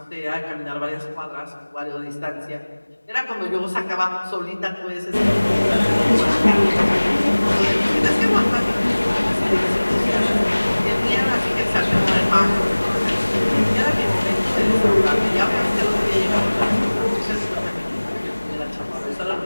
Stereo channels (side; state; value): both; inverted; correlation -1.00